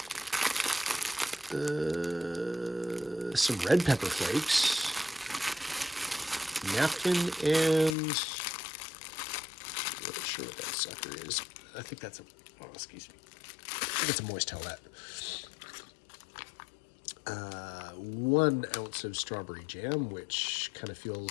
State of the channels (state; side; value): drops out; right; at 8.0 s